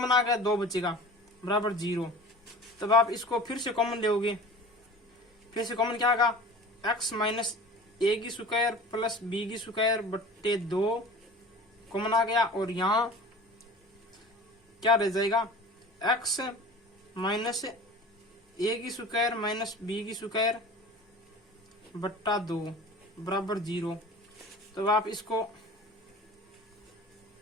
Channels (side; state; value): both; normal; correlation 0.40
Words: आ गया 2 बचेगा बराबर 0। तब आप इसको फिर से कॉमन लोगे, फिर से कॉमन क्या आएगा, x माइनस ए की स्क्वायर प्लस बी की स्क्वायर बट्टे 2 कॉमन आ गया और यहाँ क्या रह जाएगा, x माइनस ए की स्क्वायर माइनस बी की स्क्वायर बट्टा 2 बराबर 0। तो आप इसको